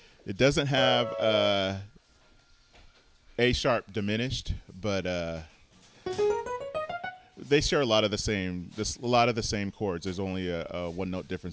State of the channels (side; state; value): both; identical; correlation 1.00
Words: doesn't have A sharp diminished, but they share a lot of the same chords. There's only a 1 note